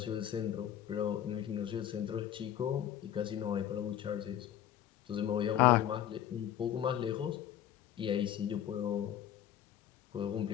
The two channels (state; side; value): quieter; right; 10.8 dB